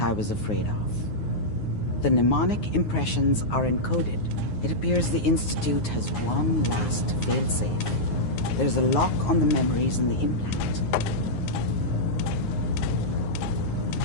I was afraid of. The mnemonic impressions are encoded. It appears the Institute has one last failsafe. There's a lock on the memories in the implant.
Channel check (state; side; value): late; right; 9.5 ms